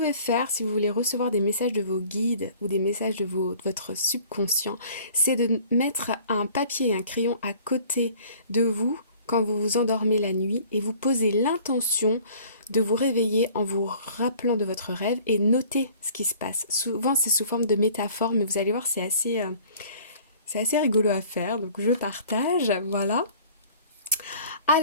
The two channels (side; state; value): both; inverted; correlation -0.51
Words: faire si vous voulez recevoir des messages de vos guides ou des messages de votre subconscient, c'est de mettre un papier et un crayon à côté de vous quand vous vous endormez la nuit et vous posez l'intention de vous réveiller en vous rappelant de votre rêve et noter ce qui se passe. Souvent c'est sous forme de métaphore, mais vous allez voir c'est assez rigolo à faire, donc je partage, voilà.